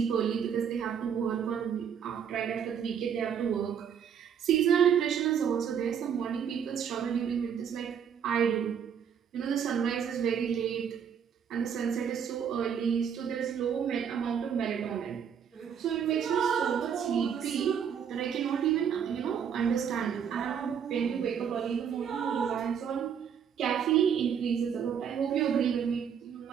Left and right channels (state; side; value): quieter; left; 7.8 dB